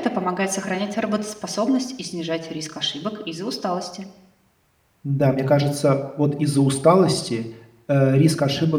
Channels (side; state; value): both; identical; correlation 1.00